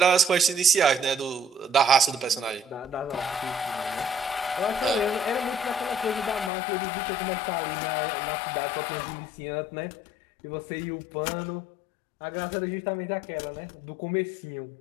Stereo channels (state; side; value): drops out; right; at 6.5 s